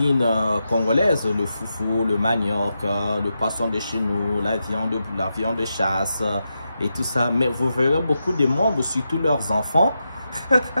congolaise, le foufou, le manioc, le poisson de chez nous, la viande de chasse et tout ça. Mais vous verrez beaucoup de membres, surtout leurs enfants.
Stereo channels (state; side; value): inverted; both; correlation -0.87